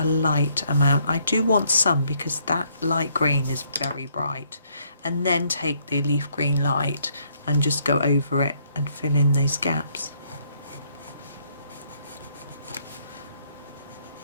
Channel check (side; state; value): both; inverted; correlation -0.69